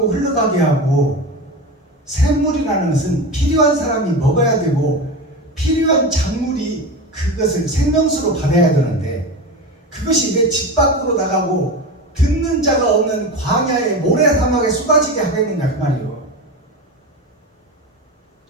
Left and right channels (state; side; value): normal; both; correlation 0.24